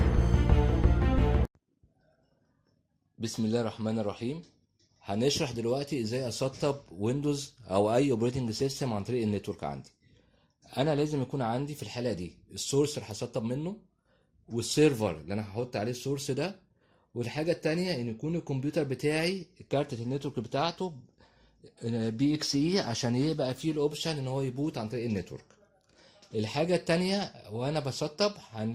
الله الرحمن الرحيم. هنشرح دلوقتي ازاي اسطب ويندوز او اي اوبريتنج سيستم عن طريق النتورك عندي. انا لازم يكون عندي في الحاله دي السورس اللي هسطب منه، والسيرفر اللي انا هحط عليه السورس ده، والحاجه التانية ان يكون الكمبيوتر بتاعي كارتة النتورك بتاعته بي اكس اي عشان يبقى فيه الاوبشن ان هو يبوت عن طريق النتورك. الحاجة التانية وانا بسطب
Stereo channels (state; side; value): identical; both; correlation 1.00